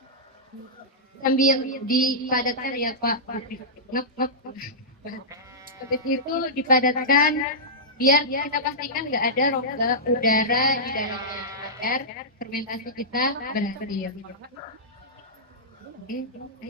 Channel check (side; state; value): both; normal; correlation -0.13